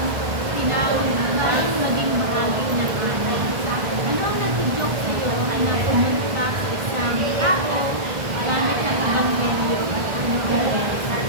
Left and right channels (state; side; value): late; left; 1.5 ms